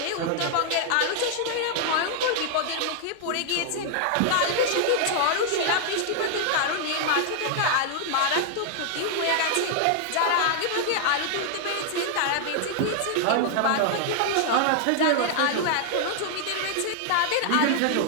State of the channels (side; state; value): both; different; correlation 0.00